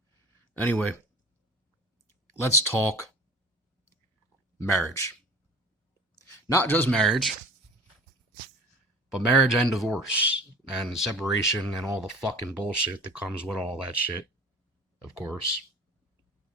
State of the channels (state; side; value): normal; both; correlation 0.40